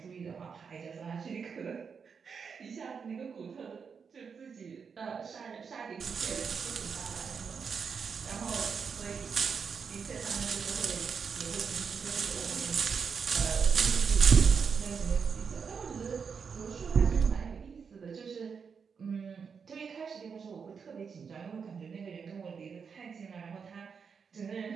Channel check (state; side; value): quieter; left; 6.1 dB